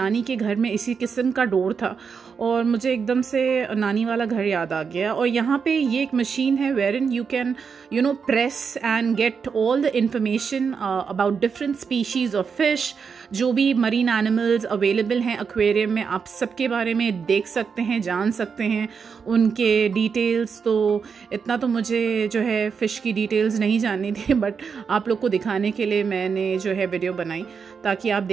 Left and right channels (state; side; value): quieter; left; 6.0 dB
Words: के घर में इसी किस्म का डोर था और मुझे एकदम से नानी वाला घर याद आ गया। और यहाँ पे ये एक मशीन है where in you can press and get all the information about different species of fish. जो भी मरीन एनिमल्स अवेलेबल हैं एक्वेरियम में, आप सबके बारे में देख सकते हैं, जान सकते हैं उनके डिटेल्स। तो इतना तो मुझे जो है फ़िश की डिटेल्स नहीं जाननी थी, बट आप लोग को दिखाने के लिए मैंने जो है वीडियो बनाई ताकि आप